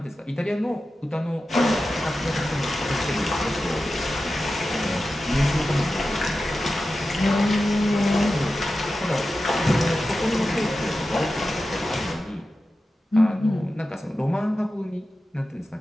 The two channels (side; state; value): both; normal; correlation 0.92